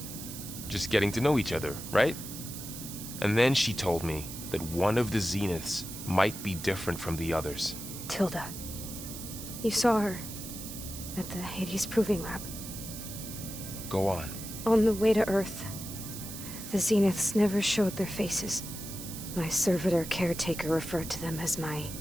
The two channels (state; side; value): noise; right; hiss, 10 dB below the sound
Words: just getting to know each other, right? And then she told me that one of the Zeniths might be different from the others. Tilda. You saw her at the Hades Proving Lab. Go on. On the way to Earth, the Zeniths never showed their faces. My servitor caretaker referred to them as my